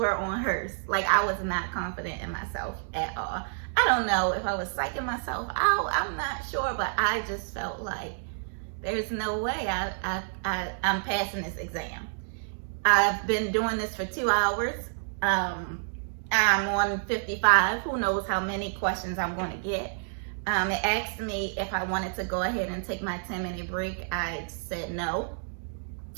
on hers. Like, I was not confident in myself at all. I don't know if I was psyching myself out. I'm not sure, but I just felt like there's no way I'm passing this exam. I've been doing this for 2 hours. I'm on 55. Who knows how many questions I'm going to get. It asked me if I wanted to go ahead and take my 10-minute break. I said no.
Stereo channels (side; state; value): left; silent; digital silence